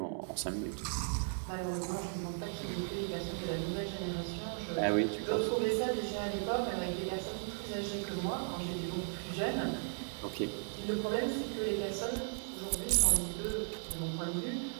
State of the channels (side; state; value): left; silent; 54 dB below the other